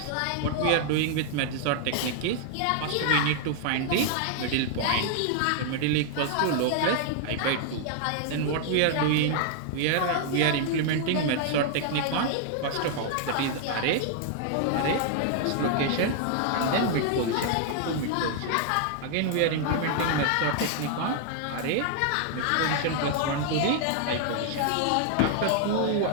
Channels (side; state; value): both; different; correlation 0.00